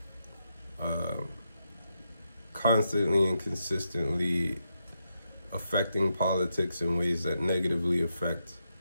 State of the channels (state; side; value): inverted; both; correlation -0.83